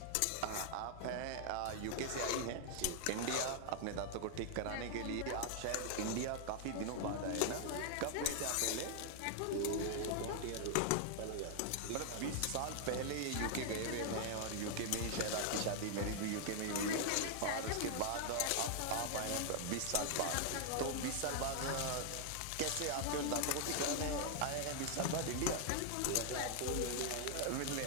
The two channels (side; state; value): both; different; correlation 0.00